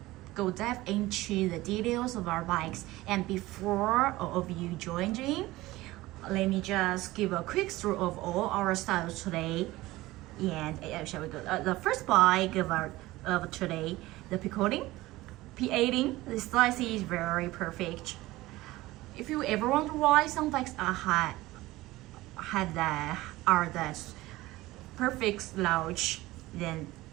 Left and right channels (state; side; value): quieter; left; 18.4 dB